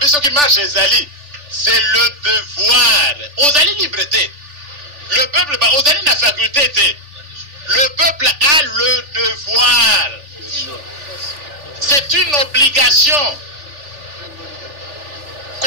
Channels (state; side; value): late; left; 3.4 ms